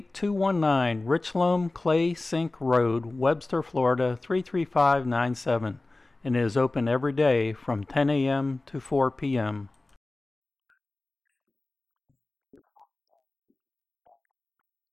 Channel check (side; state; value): right; quieter; 3.0 dB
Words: Richloam Clay Sink Road, Webster, Florida 33597, and it is open every day from 10 a.m. to 4 p.m.